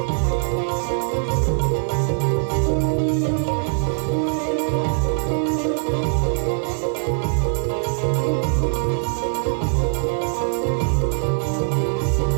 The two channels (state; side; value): silent; left; 59 dB below the other